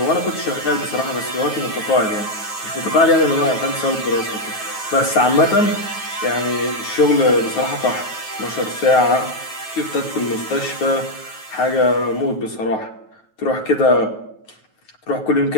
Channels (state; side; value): late; right; 9.3 ms